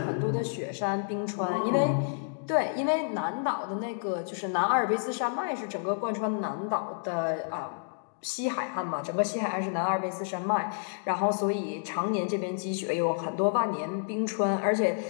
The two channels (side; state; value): right; silent; digital silence